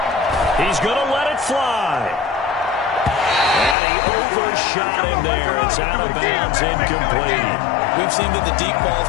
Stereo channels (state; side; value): drops out; right; at 3.8 s